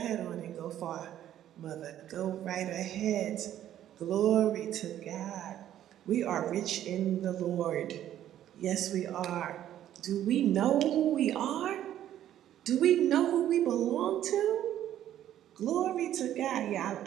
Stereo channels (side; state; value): left; quieter; 11.7 dB